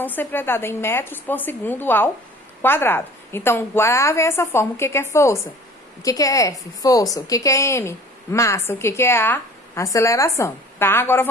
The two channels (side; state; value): both; normal; correlation 0.47